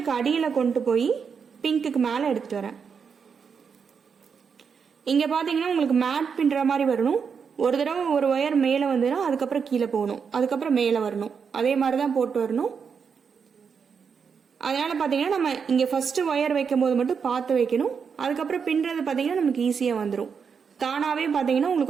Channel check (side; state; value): left; quieter; 6.3 dB